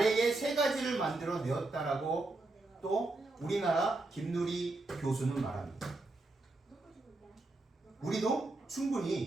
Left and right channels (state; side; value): quieter; left; 3.1 dB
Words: 3가지를 만들어 내었다라고 또 우리나라 김누리 교수는 말합니다. 우리도